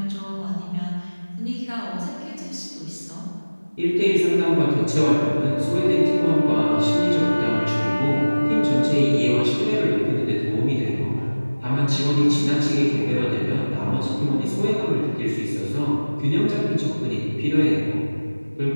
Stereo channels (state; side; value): inverted; both; correlation -1.00